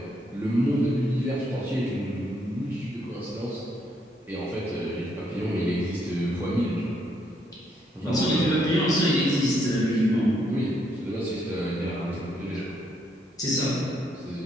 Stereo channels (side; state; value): both; normal; correlation 0.74